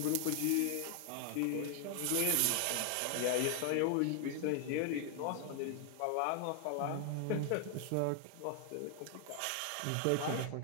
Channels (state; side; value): different; both; correlation 0.00